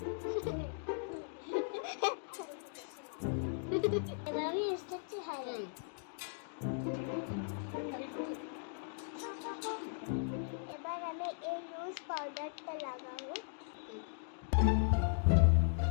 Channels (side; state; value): right; silent; digital silence